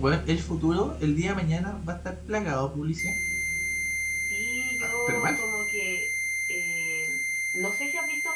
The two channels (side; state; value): both; identical; correlation 1.00